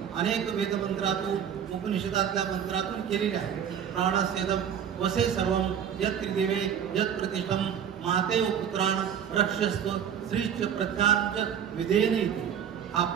अनेक वेदमंत्रातून उपनिषदातल्या मंत्रातून केलेली आहे. प्राणस्येदम वसे सर्वम यत् त्रिदेवे यत् प्रतिष्ठम मातेव पुत्रान रक्षस्व श्रीच प्रज्ञांच विधेयनी. हा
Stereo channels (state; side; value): quieter; left; 8.6 dB